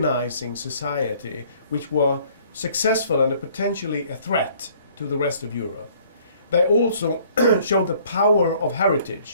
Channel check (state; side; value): inverted; both; correlation -0.58